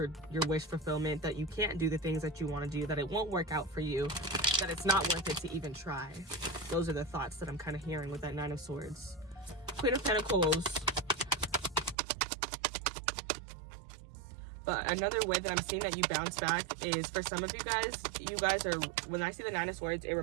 wish fulfillment, that you can't do the things that you want to do, that it won't work out for you, that it's not worth it to even try. Those are the thoughts that I'm kind of hearing with that Nine of Swords. Queen of Pentacles. But another way that I'm seeing that you bounce back is, for some of you guys are, when I see the Nine of Swords, it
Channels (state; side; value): drops out; left; at 12.0 s